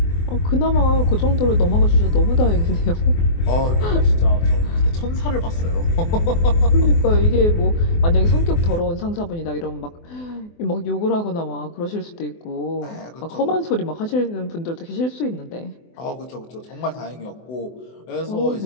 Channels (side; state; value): right; late; 24 ms